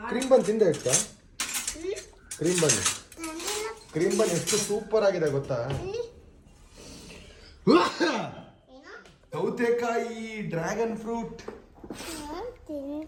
ಕ್ರೀಮ್ ಬನ್ ತಿಂದೆ ಇಷ್ಟ. ಕ್ರೀಮ್ ಬನ್ ಎಷ್ಟು ಸೂಪರ್ ಆಗಿದೆ ಗೊತ್ತಾ? ಸೌತೆಕಾಯಿ, ಡ್ರ್ಯಾಗನ್ ಫ್ರೂಟ್.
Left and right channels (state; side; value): identical; both; correlation 1.00